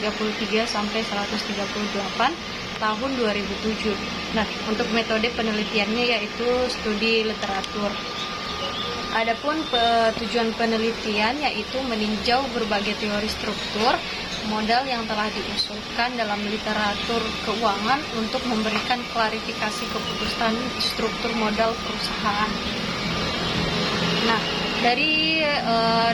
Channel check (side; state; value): both; identical; correlation 1.00